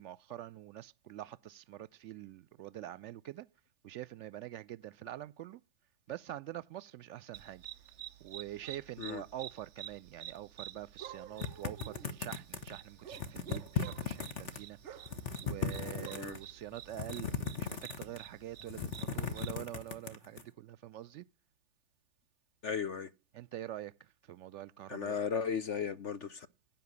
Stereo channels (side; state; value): right; late; 3.4 ms